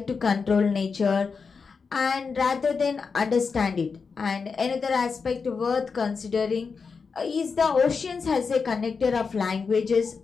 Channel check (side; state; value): right; quieter; 5.2 dB